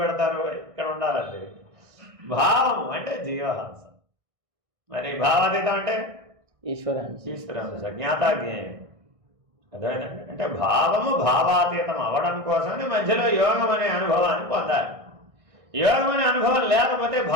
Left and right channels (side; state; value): left; late; 1.6 ms